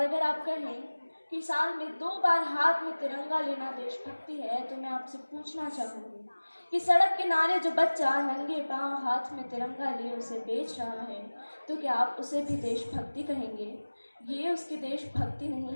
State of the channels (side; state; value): both; inverted; correlation -1.00